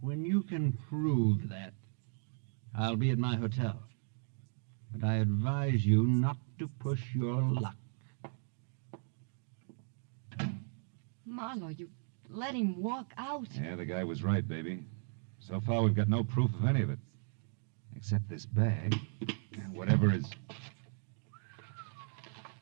When you can prove that, I'll be at my hotel. But I advise you not to push your luck. Marlowe, you let him walk out. Yeah, the guy was right, baby. So far, we've got no proof of any of it. Except this bag and whatever is...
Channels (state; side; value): silent; left; 54 dB below the other